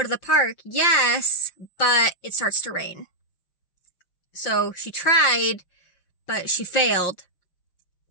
to the park? Yes, but it starts to rain. So, she tried, but she failed.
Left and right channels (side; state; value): right; late; 5.7 ms